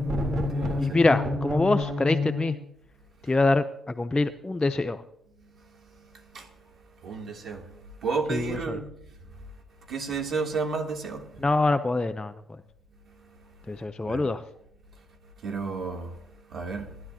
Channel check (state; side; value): normal; both; correlation 0.87